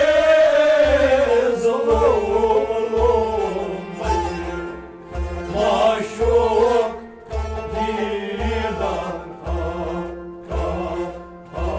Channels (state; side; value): identical; both; correlation 1.00